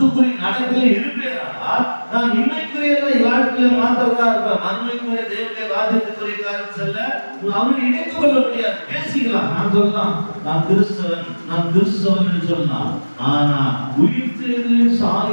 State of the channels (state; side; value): inverted; both; correlation -1.00